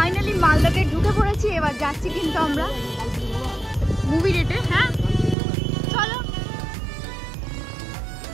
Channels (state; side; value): drops out; left; at 5.4 s